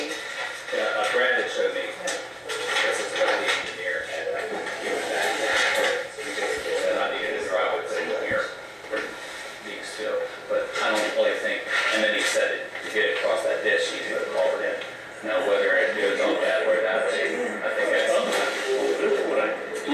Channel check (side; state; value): both; identical; correlation 1.00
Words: Yeah, Brad had showed me, this is what the engineer had given back. He basically said, I needed a driveway put in here for being still, but I don't really think, and then he said to get it across that ditch, he put a culvert in. Now, whether it goes on that or that way, I think that's.